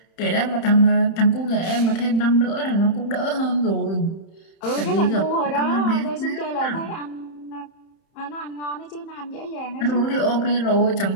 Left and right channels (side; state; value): right; late; 31 ms